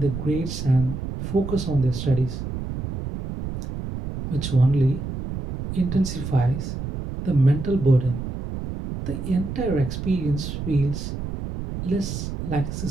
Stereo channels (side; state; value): right; noise; rumble, 6 dB below the sound